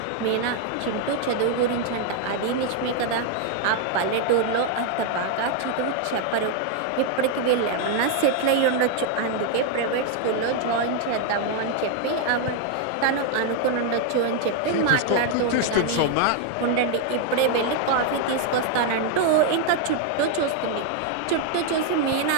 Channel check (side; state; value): both; different; correlation 0.00